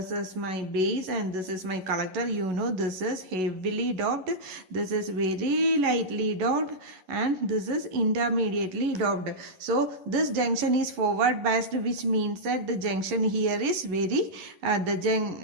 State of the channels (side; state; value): left; late; 11 ms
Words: is my base, and this is my collector. You know, this is heavily doped, this is very lightly doped, and this is intermediately doped. So this junction is forward biased, which means that the junction here is very